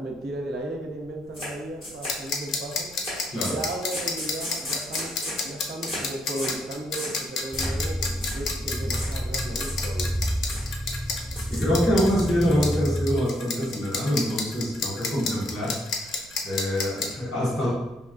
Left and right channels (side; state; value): right; noise; rumble, 23 dB below the sound